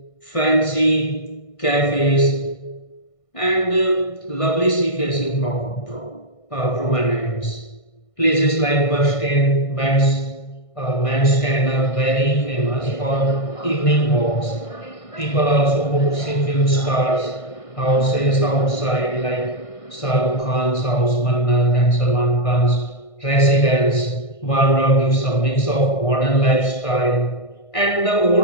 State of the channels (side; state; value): right; late; 1.5 ms